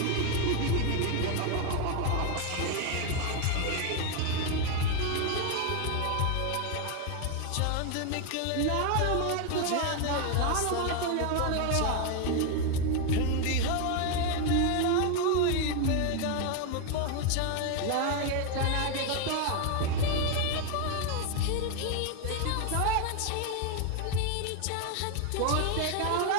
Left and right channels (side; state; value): both; different; correlation 0.01